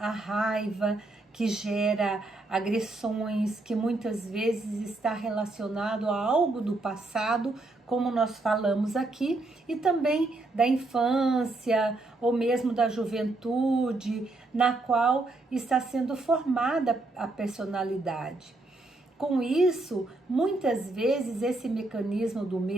raiva, que gera agressões, que muitas vezes está relacionado a algo do passado, como nós falamos aqui, e também da infância ou mesmo da juventude, na qual está sendo formada a personalidade. Com isso, muitas vezes esse mecanismo do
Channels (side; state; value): left; quieter; 3.0 dB